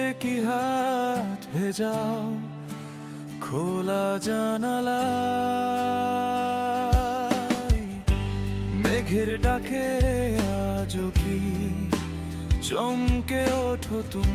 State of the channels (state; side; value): identical; both; correlation 1.00